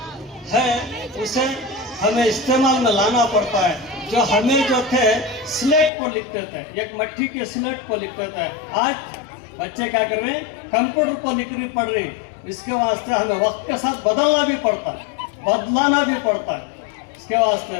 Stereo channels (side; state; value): right; drops out; at 5.9 s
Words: है उसे हमें इस्तेमाल में लाना पड़ता है। जो हमें जो थे स्लेट पर लिखते थे एक मट्टी के स्लेट पर लिखते थे आज बच्चे क्या कर रहे हैं कंप्यूटर पर लिखनी पड़ रही। इसके वास्ते हमें वक्त के साथ बदलना भी पड़ता है बदलाना भी पड़ता है। इसके